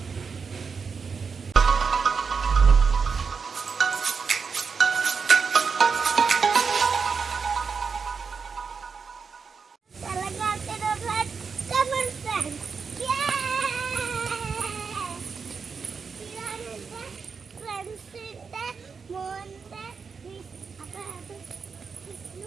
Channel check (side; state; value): left; quieter; 5.5 dB